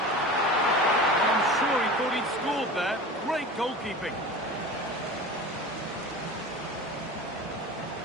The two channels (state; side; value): normal; both; correlation 0.34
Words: I'm sure he thought he'd scored there. Great goalkeeping.